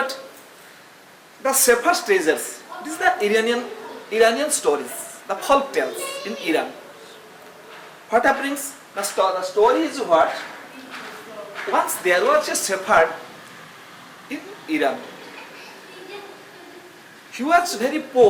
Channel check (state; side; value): identical; both; correlation 1.00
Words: The Shepherd's Treasures. This is the Iranian stories, the folk tales in Iran. What happens? The story is what? Once there was a shepherd in Iran. He was very